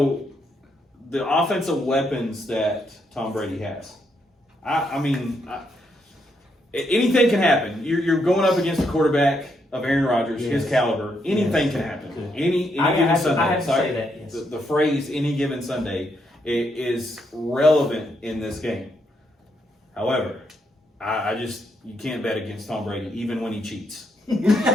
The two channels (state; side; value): normal; both; correlation 0.77